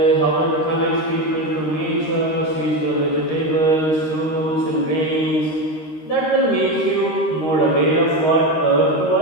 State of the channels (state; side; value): late; right; 13 ms